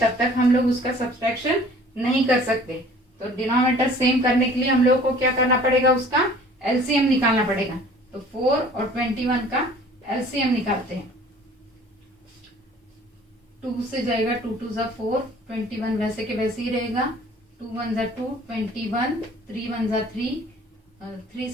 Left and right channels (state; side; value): normal; both; correlation 0.50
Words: तक हम लोग उसका सब्सट्रैक्शन नहीं कर सकते। तो डिनोमिनेटर सेम करने के लिए हम लोगों को क्या करना पड़ेगा, उसका एलसीएम निकालना पड़ेगा। तो 4 और 21 का एलसीएम निकालते हैं। 2 से जाएगा, 2 × 2 = 4, 21 वैसे के वैसे ही रहेगा, 2 × 1 = 2, 21, 3 × 1 = 3, 3 ×